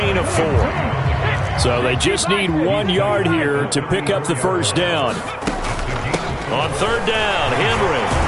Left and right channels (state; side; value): identical; both; correlation 1.00